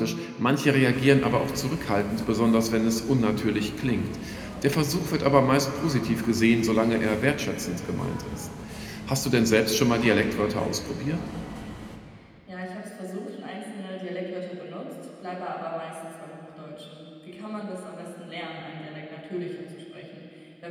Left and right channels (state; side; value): identical; both; correlation 1.00